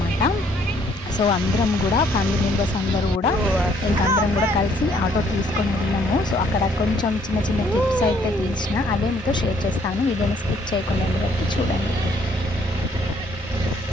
సో అందరం కూడా ఫ్యామిలీ మెంబర్స్ అందరూ కూడా అందరం కూడా కలిసి ఆటో తీసుకొని వెళ్ళాము. సో అక్కడ కొంచెం చిన్న చిన్న క్లిప్స్ అయితే తీసిన అవే మీతో షేర్ చేస్తాను. వీడియోని స్కిప్ చేయకుండా వరకు చూడండి.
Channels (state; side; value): normal; both; correlation 0.65